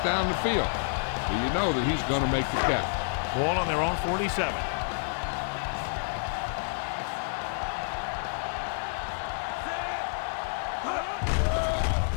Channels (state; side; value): silent; right; digital silence